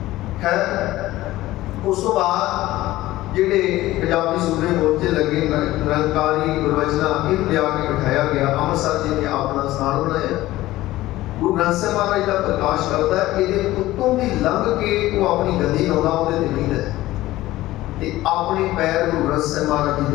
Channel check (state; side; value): quieter; right; 16.6 dB